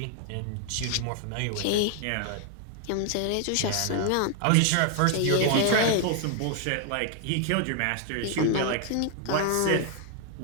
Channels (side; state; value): both; different; correlation 0.00